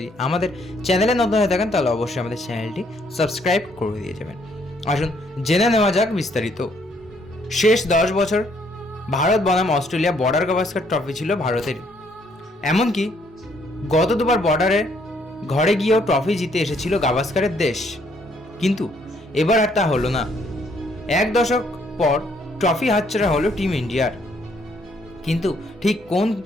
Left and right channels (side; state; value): both; normal; correlation 0.68